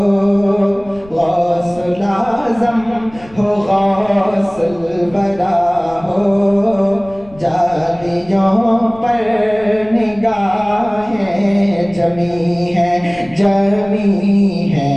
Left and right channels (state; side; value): noise; left; rumble, 22 dB below the sound